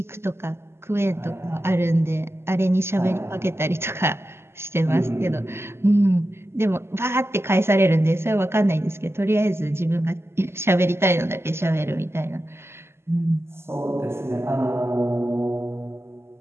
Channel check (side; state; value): left; late; 0.12 ms